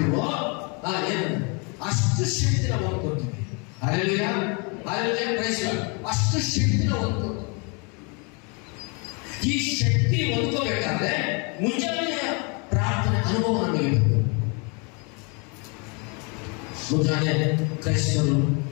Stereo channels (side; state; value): right; quieter; 33.1 dB